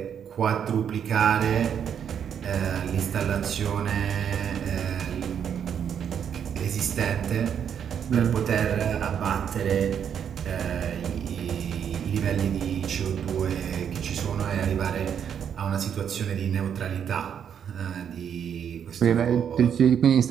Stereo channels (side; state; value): left; quieter; 8.3 dB